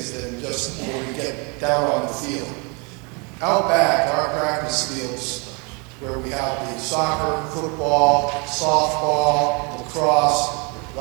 than just when we get down on the field. Out back, our practice fields, where we have the soccer, football, softball, lacrosse, a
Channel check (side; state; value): left; quieter; 32.3 dB